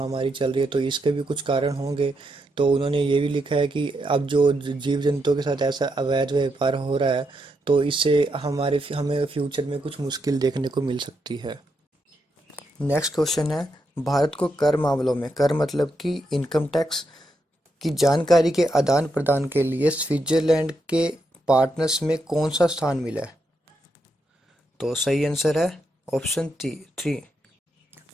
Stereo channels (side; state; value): both; normal; correlation 0.81